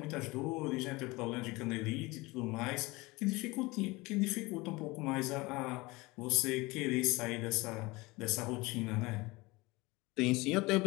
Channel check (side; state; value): right; quieter; 22.8 dB